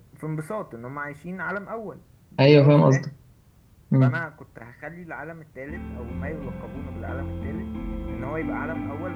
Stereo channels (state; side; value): identical; both; correlation 1.00